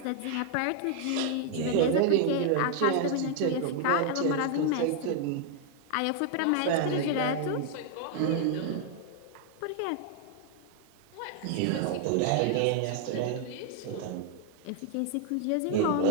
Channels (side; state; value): both; different; correlation 0.00